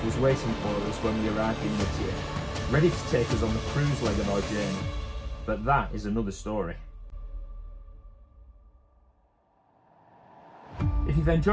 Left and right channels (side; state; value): both; identical; correlation 1.00